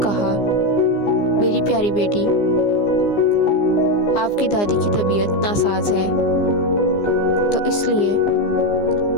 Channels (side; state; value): right; late; 15 ms